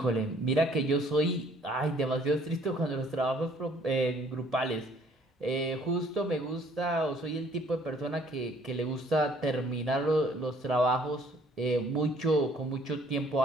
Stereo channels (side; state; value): both; normal; correlation 0.59